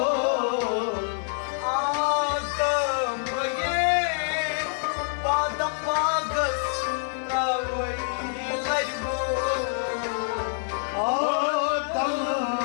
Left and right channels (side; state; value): right; silent; digital silence